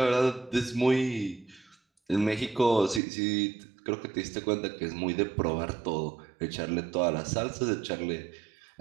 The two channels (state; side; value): drops out; left; at 3.0 s